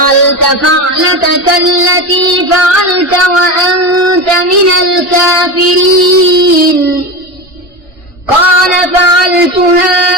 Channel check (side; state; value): both; normal; correlation 0.22